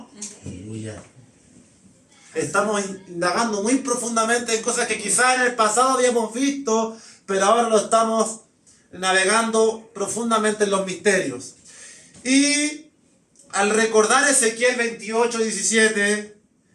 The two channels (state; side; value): identical; both; correlation 1.00